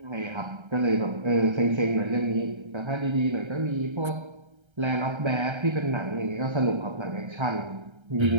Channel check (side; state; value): left; late; 1.3 ms